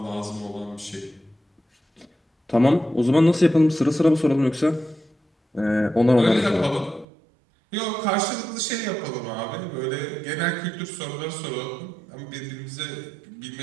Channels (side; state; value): left; drops out; at 7.1 s